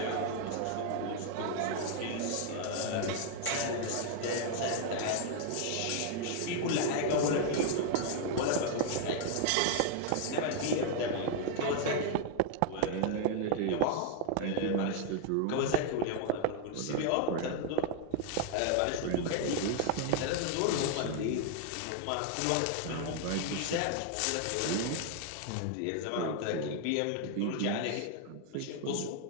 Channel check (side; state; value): both; different; correlation 0.00